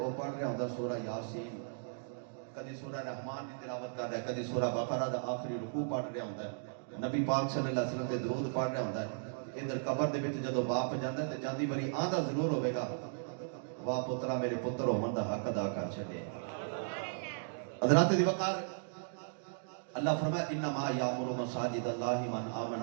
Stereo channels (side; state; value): left; silent; digital silence